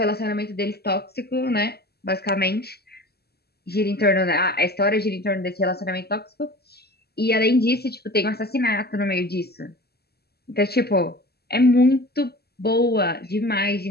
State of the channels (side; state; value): right; late; 0.46 ms